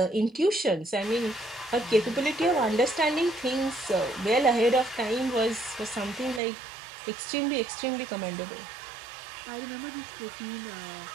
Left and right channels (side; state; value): left; drops out; at 6.4 s